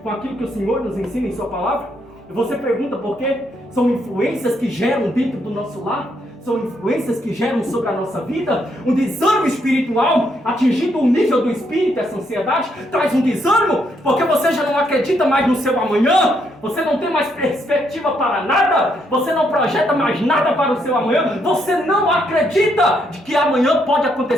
com aquilo que o Senhor nos ensina em sua palavra. E você pergunta por quê? São influências que geram dentro do nosso lar, são influências que geram sobre a nossa vida um desânimo espiritual, atingindo o nível do espírito. Essa ansiedade traz um desânimo, porque você já não acredita mais no seu amanhã, você não tem mais perspectiva para nada, você não projeta mais nada para o seu amanhã, você não acredita de que amanhã pode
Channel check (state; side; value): normal; both; correlation 0.75